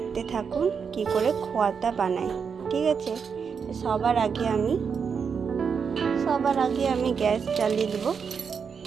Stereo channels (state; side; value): quieter; left; 6.3 dB